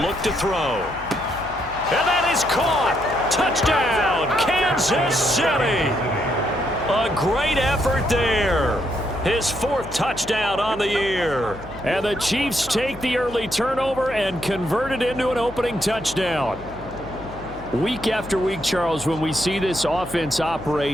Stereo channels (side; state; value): left; noise; hum, 16 dB below the sound